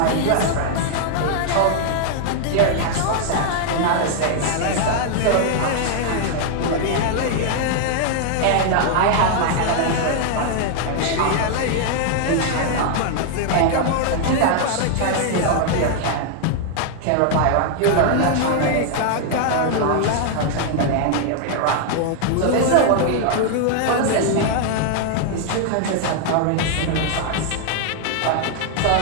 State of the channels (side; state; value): both; different; correlation 0.00